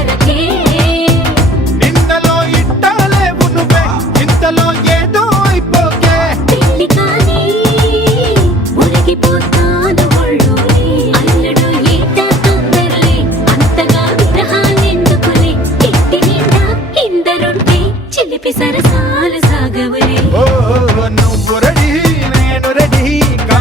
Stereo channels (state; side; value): normal; both; correlation 0.53